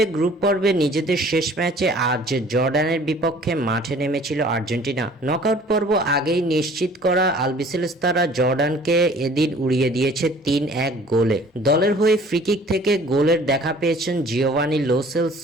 গ্রুপ পর্বে নিজেদের শেষ ম্যাচে আজ জর্ডানের বিপক্ষে মাঠে নেমেছিল আর্জেন্টিনা। নকআউট পর্ব আগেই নিশ্চিত করা আলবিসেলেস্তারা জর্ডানকে এদিন উড়িয়ে দিয়েছে ৩-১ গোলে। দলের হয়ে ফ্রিকিক থেকে গোলের দেখা পেয়েছেন জিওভানি লো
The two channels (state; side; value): normal; both; correlation 0.52